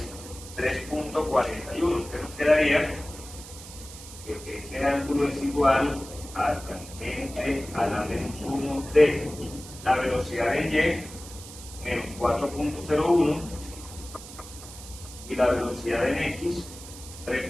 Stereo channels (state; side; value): noise; right; hiss, 15 dB below the sound